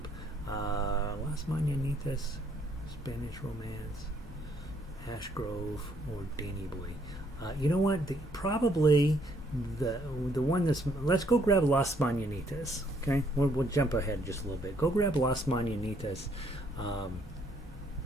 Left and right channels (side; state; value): both; normal; correlation 0.68